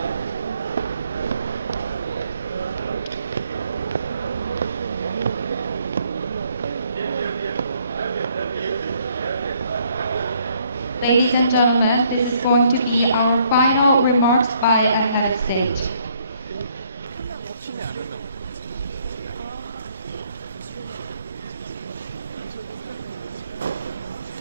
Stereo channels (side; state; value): both; inverted; correlation -0.67